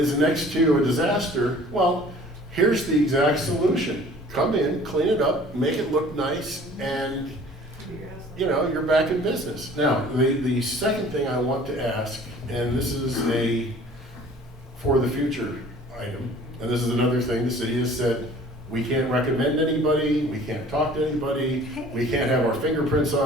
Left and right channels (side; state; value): both; normal; correlation 0.49